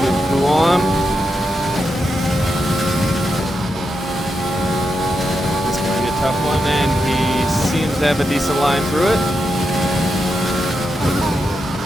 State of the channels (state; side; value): normal; both; correlation 0.85